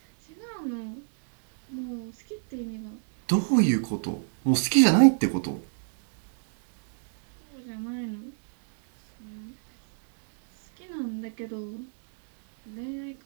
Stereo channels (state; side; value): silent; left; digital silence